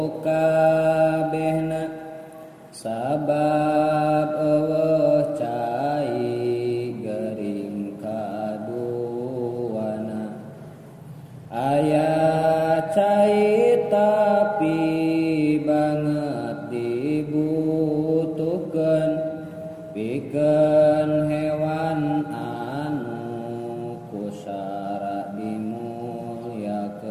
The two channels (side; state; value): both; identical; correlation 1.00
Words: kabehna, sabab eueuh cai gering kaduana. Aya cai tapi banget dibutuhkeun pikeun hewan anu kusara